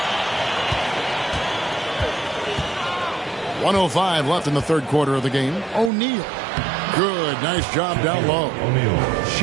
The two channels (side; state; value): left; drops out; at 5.9 s